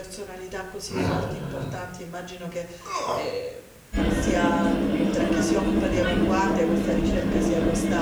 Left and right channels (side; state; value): both; identical; correlation 1.00